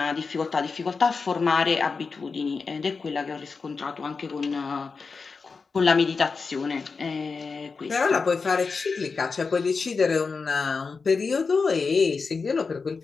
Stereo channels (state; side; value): quieter; right; 4.7 dB